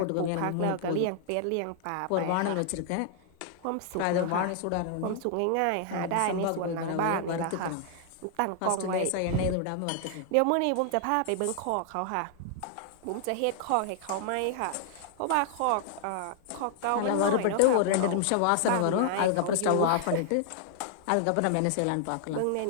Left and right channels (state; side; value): different; both; correlation 0.00